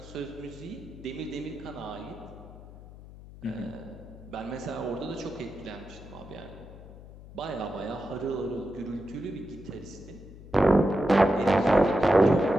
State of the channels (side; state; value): left; noise; hum, 17 dB below the sound